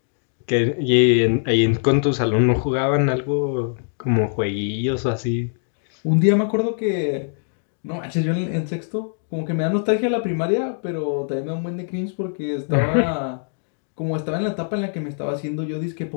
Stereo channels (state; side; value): silent; right; digital silence